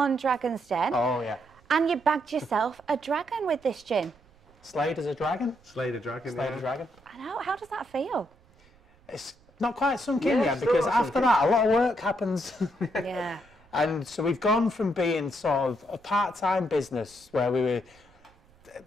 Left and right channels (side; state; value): right; noise; rumble, 30 dB below the sound